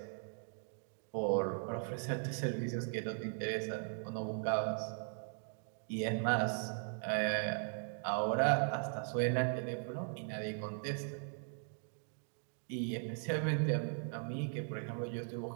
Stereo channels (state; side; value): silent; left; 52 dB below the other